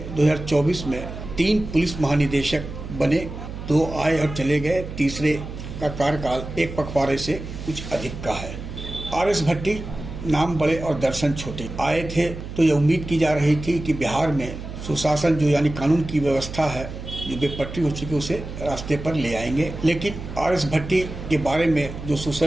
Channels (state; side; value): noise; right; hum, 10 dB below the sound